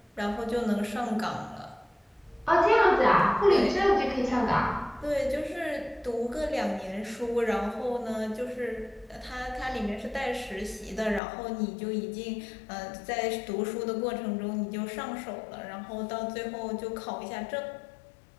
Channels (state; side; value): drops out; right; at 11.2 s